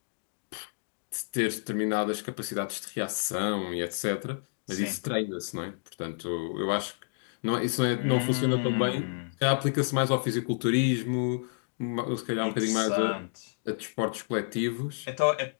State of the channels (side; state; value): right; silent; digital silence